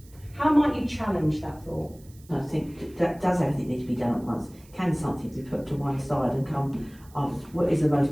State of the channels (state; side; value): noise; right; hiss, 26 dB below the sound